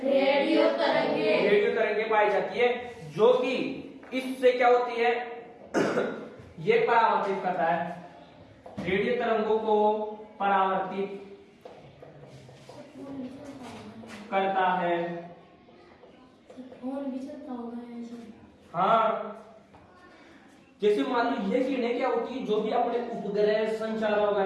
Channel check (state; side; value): identical; both; correlation 1.00